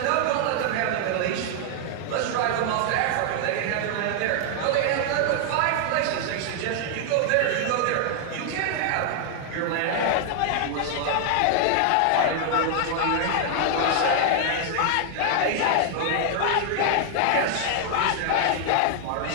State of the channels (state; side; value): different; both; correlation 0.00